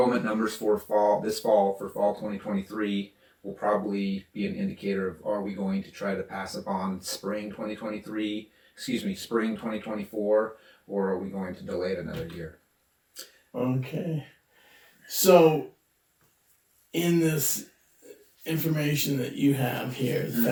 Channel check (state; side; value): identical; both; correlation 1.00